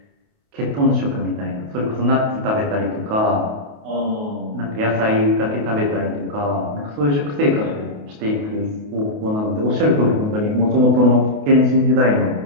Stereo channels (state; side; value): late; left; 28 ms